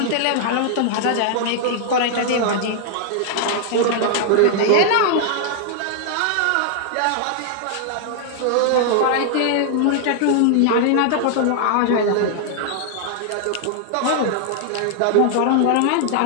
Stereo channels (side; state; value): both; different; correlation -0.01